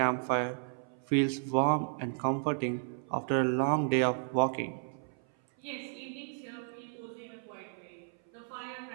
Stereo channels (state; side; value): silent; left; 56 dB below the other